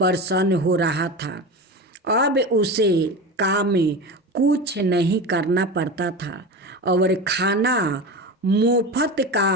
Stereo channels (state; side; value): normal; both; correlation 0.26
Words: हो रहा था। अब उसे काम में कुछ नहीं करना पड़ता था और खाना मुफ्त